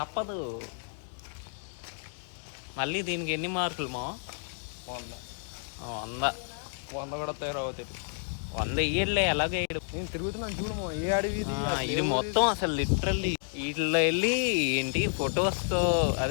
మళ్ళీ దీనికి ఎన్ని మార్కులు మా? 100. 100 కూడా తయారవుతుంది. 100 ఇయ్యలే, ఎలాగే నేను తిరుగుతున్నాను చూడము. ఏ అడవి ఇది మొత్తం అసలు లిటరల్లీ వీటిలో వెళ్ళి ఏంటి ఫొటోస్తో,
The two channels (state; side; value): silent; right; 58 dB below the other